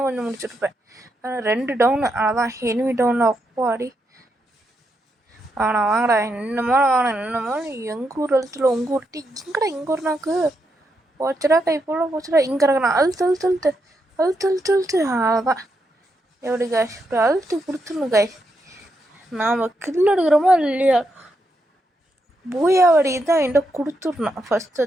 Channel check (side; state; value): both; normal; correlation 0.81